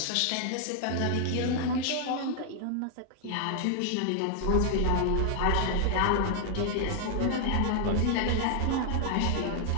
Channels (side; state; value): both; different; correlation 0.00